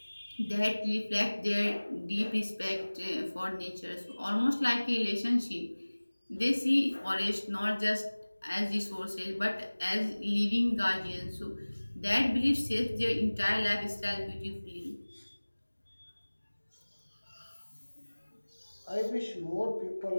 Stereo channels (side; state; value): both; inverted; correlation -1.00